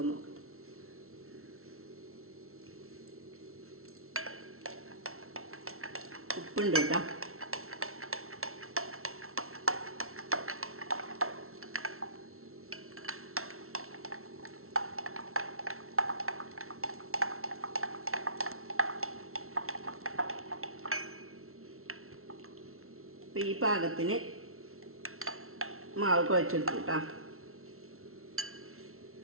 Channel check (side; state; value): left; late; 0.62 ms